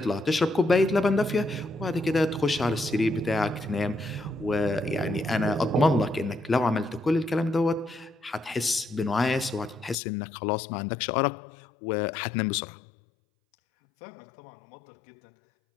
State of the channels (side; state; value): right; drops out; at 10.0 s